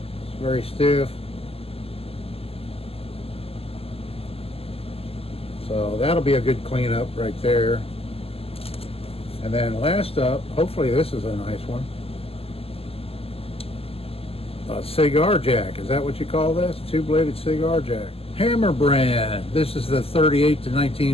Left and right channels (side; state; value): right; late; 0.28 ms